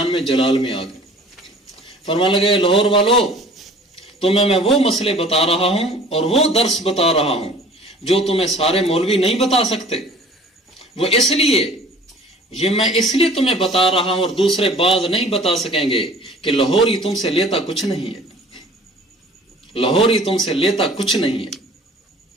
میں جلال میں آ گئے، فرمانے لگے لاہور والو تمہیں میں وہ مسئلے بتا رہا ہوں اور وہ درس بتا رہا ہوں جو تمہیں سارے مولوی نہیں بتا سکتے، وہ اس لیے یہ میں اس لیے تمہیں بتا رہا ہوں اور دوسرے بعض نہیں بتا سکیں گے کہ لاہوری تم سے لیتا کچھ نہیں ہے، لاہوری تم سے لیتا کچھ نہیں ہے۔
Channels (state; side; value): normal; both; correlation 0.48